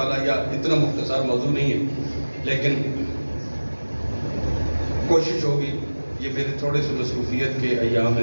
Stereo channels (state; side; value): inverted; both; correlation -1.00